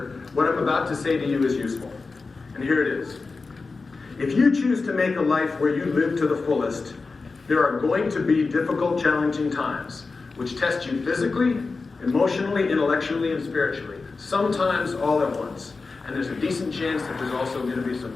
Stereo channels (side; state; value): right; quieter; 4.1 dB